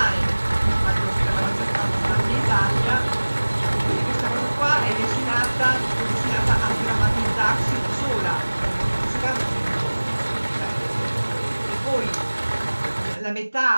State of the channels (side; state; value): both; inverted; correlation -1.00